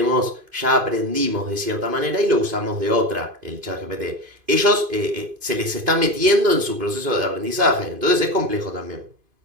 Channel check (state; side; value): late; left; 2.5 ms